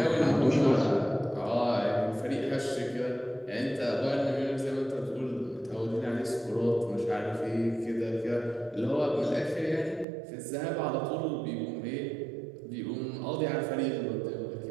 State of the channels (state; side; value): drops out; left; at 10.1 s